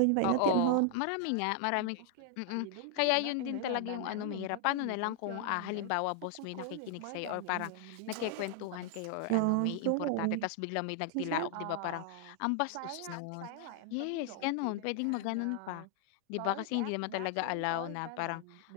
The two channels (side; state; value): both; different; correlation 0.00